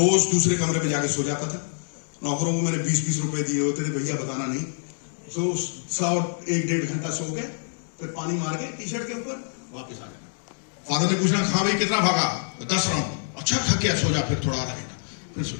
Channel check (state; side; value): silent; right; digital silence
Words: दूसरे कमरे में जाके सो जाता था। नौकरों को मैंने 20-20 रुपए दिए होते थे, भैया बताना नहीं। तो 1.5 घंटा सो के फिर पानी मार के टी शर्ट के ऊपर वापस आ जाना। फादर ने पूछना, हाँ भाई कितना भागा? 10 राउंड। अच्छा थक गया, सो जा फिर थोड़ा आधा घंटा, फिर सो